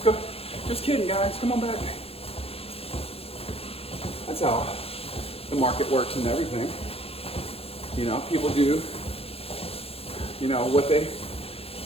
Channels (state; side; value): late; right; 0.28 ms